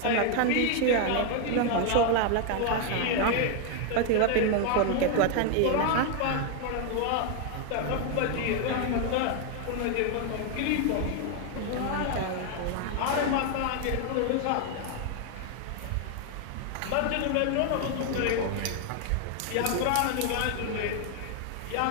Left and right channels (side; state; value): both; different; correlation 0.00